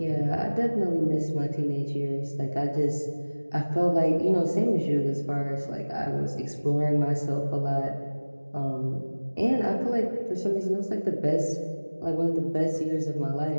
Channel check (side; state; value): both; inverted; correlation -1.00